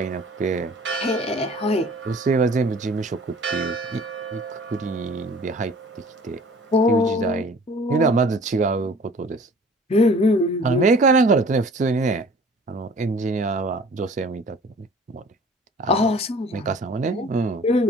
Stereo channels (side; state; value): both; normal; correlation 0.49